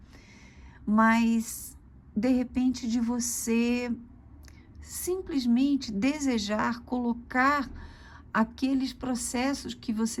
mas, de repente, de você simplesmente desejar colocar aqueles processos que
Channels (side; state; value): both; identical; correlation 1.00